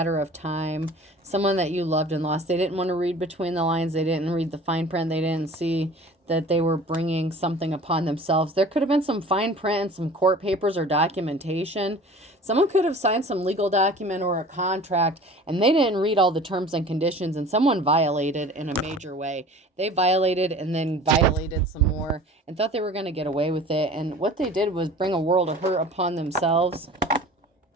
of time. Someone that you loved and lost. They didn't want to read between the lines. They didn't read the fine print. They didn't see that they were bringing something upon themselves. There could have been some fine print and some court papers or documentation. Someone could have signed some legal document or a contract, and they didn't read all the terms and conditions, and someone violated in a major way. They violated and then violated some more and thought they were going to get away with it. And what they did was bring a world of hurt upon themselves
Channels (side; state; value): both; normal; correlation 0.43